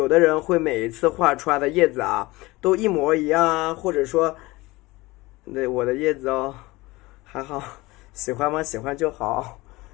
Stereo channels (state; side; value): quieter; right; 21.2 dB